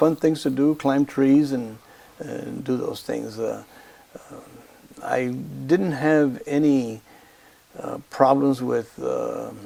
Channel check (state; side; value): identical; both; correlation 1.00